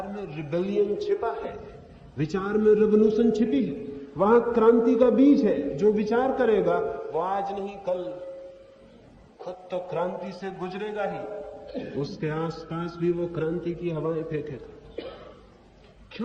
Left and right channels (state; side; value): identical; both; correlation 1.00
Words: में रिबेलियन छिपा है, विचार में रेवोल्यूशन छिपी है। वहां क्रांति का बीज है। जो विचार करेगा वो आज नहीं कल खुद तो क्रांति से गुजरेगा ही, उसके आसपास भी वो क्रांति की हवाएं फेंकेगा।